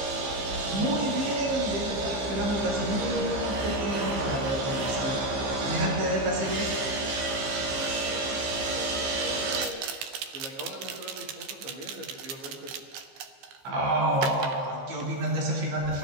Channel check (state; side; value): late; left; 15 ms